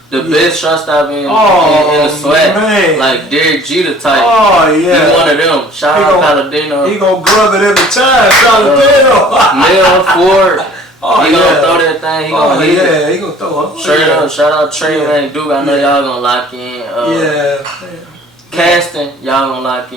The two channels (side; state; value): both; normal; correlation 0.51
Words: The best shortstop in the SWAC, man. Like Derek Jeter type. Oh, yeah. He one of them. Shout out Palladino. He gonna glove it every time. Palladino. Mel Ford. He gonna throw that thing. He gonna hit it. He gonna throw it. Straight up. Shout out Trey and Duke. I know y'all gonna lock in. Casting, y'all gonna lock